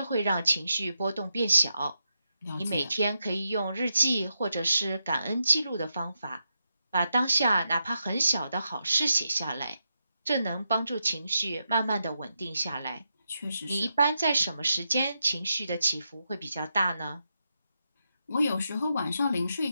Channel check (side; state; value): both; inverted; correlation -0.85